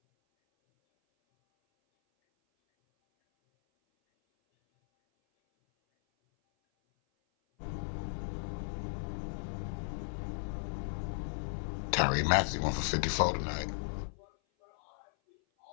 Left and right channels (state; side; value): silent; right; 54 dB below the other